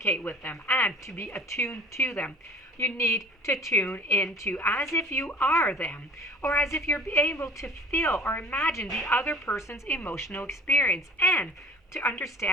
with them, and to be attuned to them, you need to tune into as if you are them, or as if you're able to feel or imagine the other person's emotional experience and to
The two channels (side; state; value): both; normal; correlation 0.46